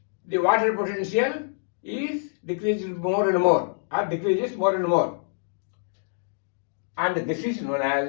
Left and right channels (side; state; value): right; silent; digital silence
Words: the water potential is decreased more and more, or decreases more and more. And this is known